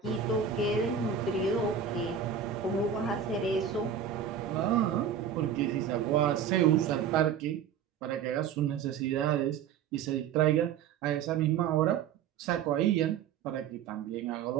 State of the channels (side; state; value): left; quieter; 8.0 dB